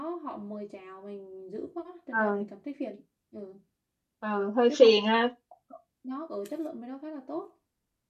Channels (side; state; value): both; identical; correlation 1.00